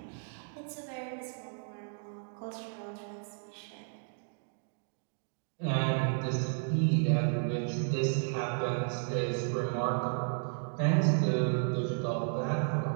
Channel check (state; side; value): silent; left; 56 dB below the other